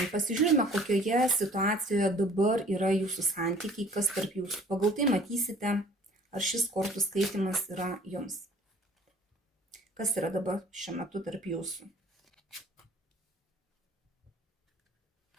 Pasižiūrime, kokioje situacijoje dabar yra jūsų santykiai, kas tarp jūsų. Pagal tai matysite, ar šis kortų skaitimas yra jums. Kas yra dabar šiuo metu tarp jūsų?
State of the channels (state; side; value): normal; both; correlation 0.52